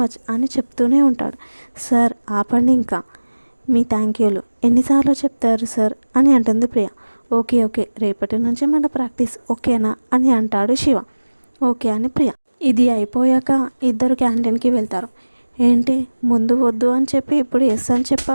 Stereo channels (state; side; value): inverted; both; correlation -1.00